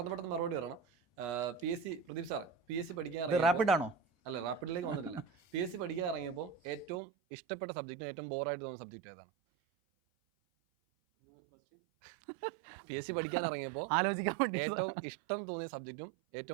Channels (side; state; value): left; drops out; at 7.0 s